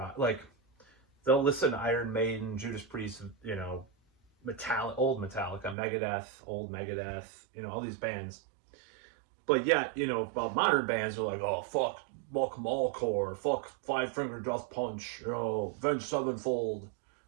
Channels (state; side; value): drops out; left; at 5.8 s